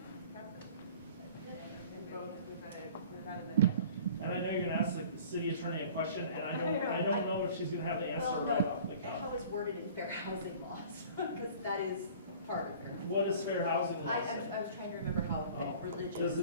practice. And both without a minute. And I know you're gonna ask the city attorney a question, and I don't know if she's gonna have the answer right off the cuff. How it's worded in fair housing laws, because that is part of fair. What is fair housing law? I was trying to remember how religious. Does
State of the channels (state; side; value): inverted; both; correlation -0.46